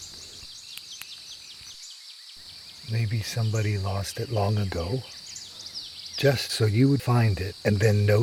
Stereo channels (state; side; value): identical; both; correlation 1.00